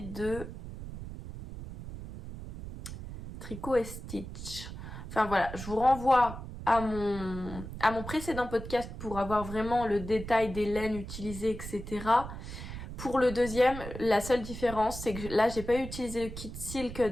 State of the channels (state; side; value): noise; right; rumble, 10 dB below the sound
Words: Tricot et Stitch. Enfin voilà, je vous renvoie à mon précédent podcast pour avoir vraiment le détail des laines utilisées, etc. Pour le deuxième, la seule différence, c'est que là, j'ai pas utilisé le kit silk